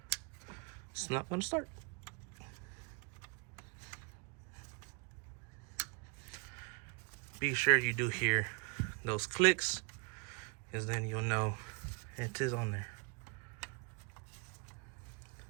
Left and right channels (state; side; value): quieter; left; 34.8 dB